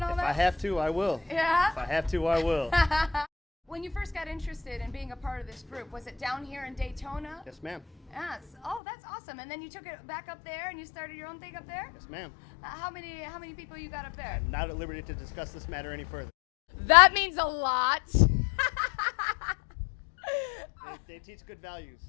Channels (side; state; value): right; drops out; at 8.8 s